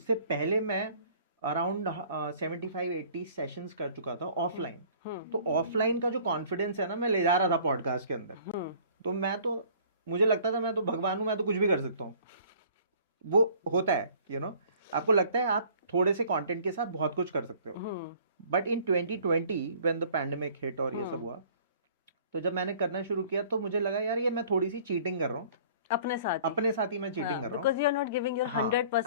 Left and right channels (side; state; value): both; inverted; correlation -0.53